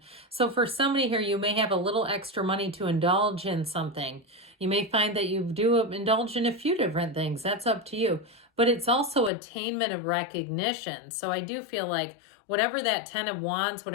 So for somebody here, you may have a little extra money to indulge in something. You may find that you do indulge in a few different things. That's up to you. But it's also attainment of recognition. So I do feel like whatever that 10 of Wands,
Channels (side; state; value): right; drops out; at 9.3 s